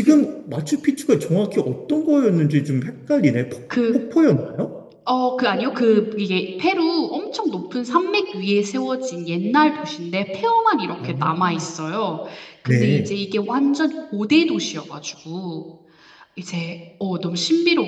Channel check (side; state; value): both; identical; correlation 1.00